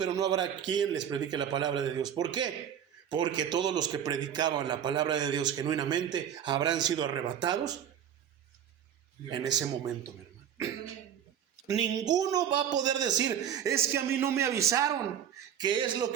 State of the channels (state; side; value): quieter; left; 9.2 dB